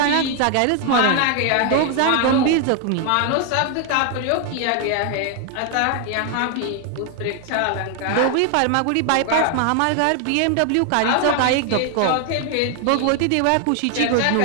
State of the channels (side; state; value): both; different; correlation 0.00